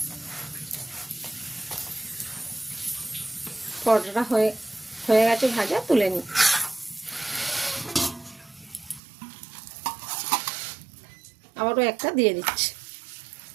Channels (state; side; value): drops out; left; at 9.0 s